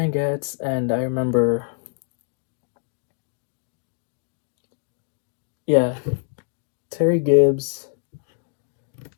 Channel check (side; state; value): right; silent; 62 dB below the other